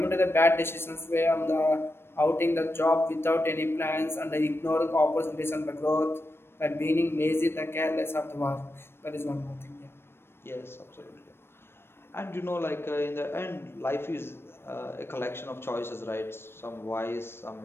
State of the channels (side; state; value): right; late; 0.12 ms